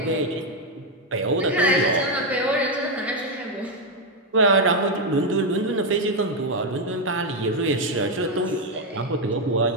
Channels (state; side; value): normal; both; correlation 0.04